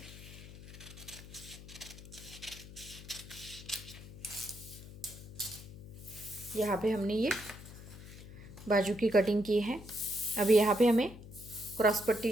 यहाँ पे हमने ये बाजू की कटिंग की है। अभी यहाँ पे हमें क्रॉस पट्टी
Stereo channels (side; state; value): left; noise; hum, 15 dB below the sound